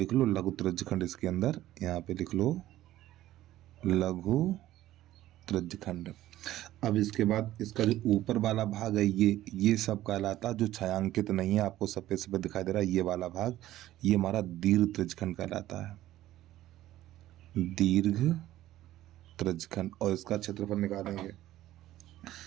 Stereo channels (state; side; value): quieter; left; 14.4 dB